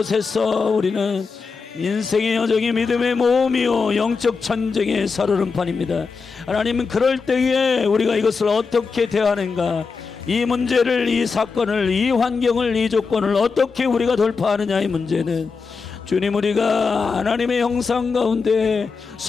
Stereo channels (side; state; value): right; quieter; 4.9 dB